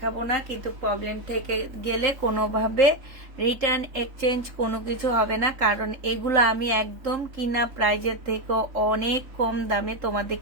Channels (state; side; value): late; left; 3.8 ms